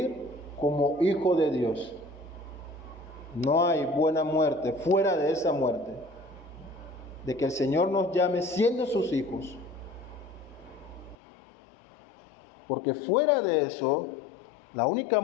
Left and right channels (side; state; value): right; drops out; at 11.2 s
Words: como hijo de Dios. No hay buena muerte fuera de esa muerte, de que el Señor nos llame siendo sus hijos. Porque fuera de eso, la única